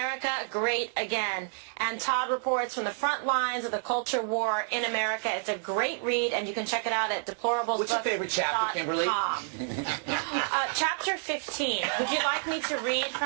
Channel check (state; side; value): silent; left; 58 dB below the other